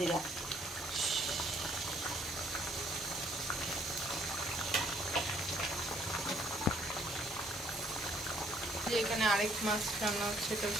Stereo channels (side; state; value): both; normal; correlation 0.65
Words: এখানে আরেক মাছ রান্না হচ্ছে, এটা